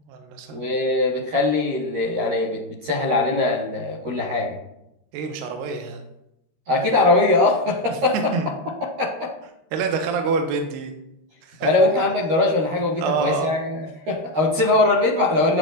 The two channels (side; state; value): left; late; 13 ms